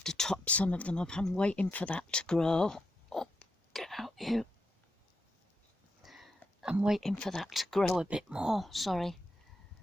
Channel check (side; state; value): both; normal; correlation 0.83